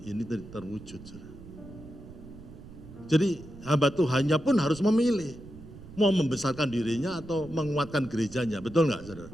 ini terwujud. Saudara. Jadi hamba Tuhannya pun harus memilih, mau membesarkan dirinya atau menguatkan gerejanya, betul nggak saudara?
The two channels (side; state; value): right; noise; rumble, 16 dB below the sound